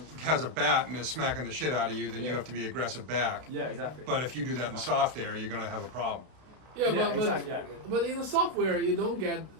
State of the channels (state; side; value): late; left; 32 ms